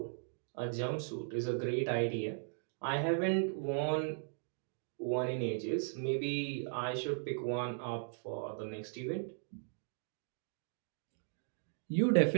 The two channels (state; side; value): silent; left; digital silence